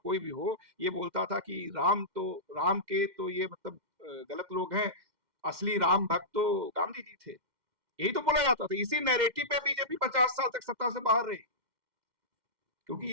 भी हो, ये बोलता था कि राम के तो ये मतलब गलत लोग हैं, असली राम भक्त तो गांधी जी थे। यही तो बोला जाता था। इसी नैरेटिव पे बीजेपी 50 साल तक सत्ता से बाहर रही, क्योंकि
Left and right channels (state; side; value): late; left; 2.1 ms